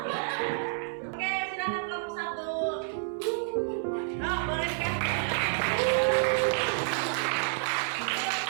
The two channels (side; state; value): left; silent; 58 dB below the other